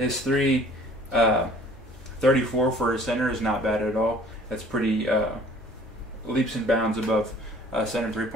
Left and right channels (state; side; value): normal; both; correlation 0.52